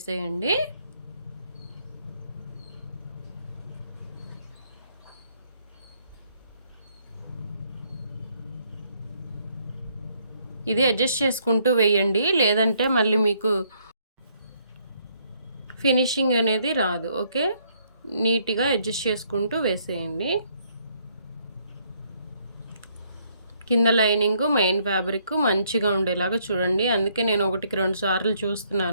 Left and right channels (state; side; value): inverted; both; correlation -0.68